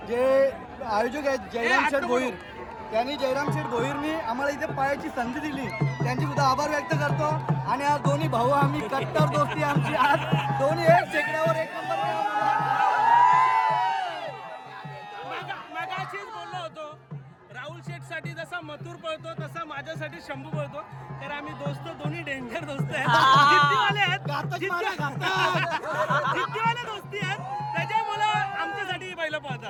जे आयोजक आहेत जयराम शेठ भोईर, त्यांनी जयराम शेठ भोईरनी आम्हाला इथे पायाची संधी दिली, त्यांची सुद्धा आभार व्यक्त करतो. आणि आज दोन्ही भाऊ आम्ही कट्टर दोस्ती आमची, आज दोन्ही एक शेकड्यावर एक नंबर. मगाशीच बोललो होतो, राहुल शेठ साठी जसा मथुर पळतो तसा माझ्यासाठी शंभू पळतो. तर आम्ही दोन्ही डेंजर दोस्त आहेत, जिद्दीवाले आहेत, जिद्दीवाले दोस्ती आहेत, त्याच्यामुळे आमच्यासाठी बैल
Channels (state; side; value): identical; both; correlation 1.00